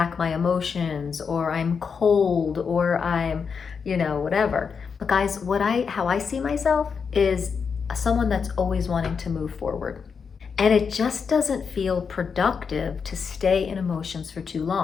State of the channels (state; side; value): quieter; right; 6.0 dB